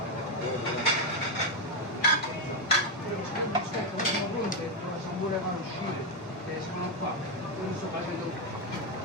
non volevano uscire, sono qua, non sto facendo.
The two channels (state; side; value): normal; both; correlation 0.04